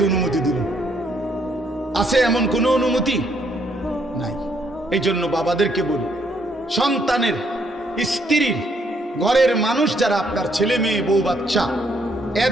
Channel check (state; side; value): normal; both; correlation 0.70